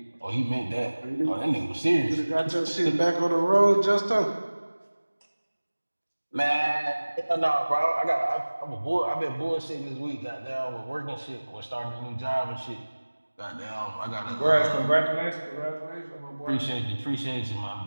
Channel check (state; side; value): inverted; both; correlation -1.00